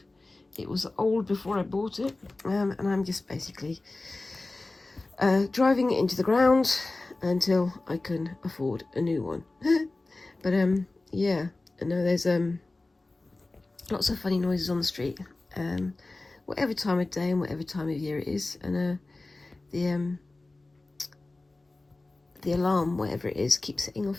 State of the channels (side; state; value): right; quieter; 3.1 dB